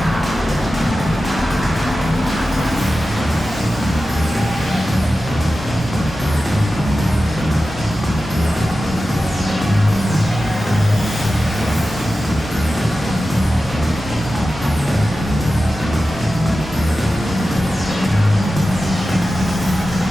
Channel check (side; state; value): both; normal; correlation 0.93